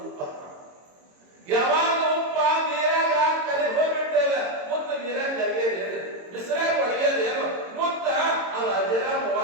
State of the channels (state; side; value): late; left; 22 ms